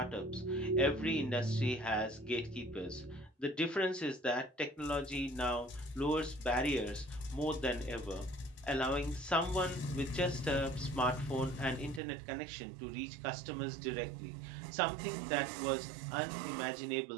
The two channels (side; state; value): left; drops out; at 12.0 s